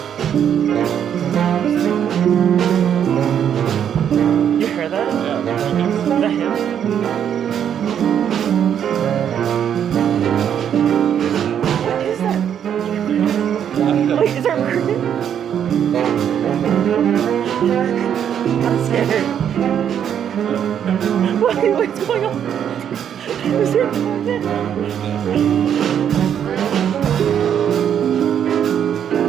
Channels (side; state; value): left; quieter; 9.0 dB